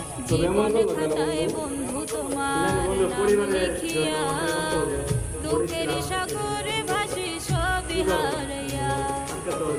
দুঃখের সাগরে ভাসি সবই হারাইয়া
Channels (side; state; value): both; identical; correlation 1.00